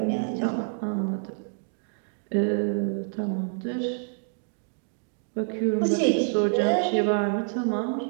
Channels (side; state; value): left; silent; digital silence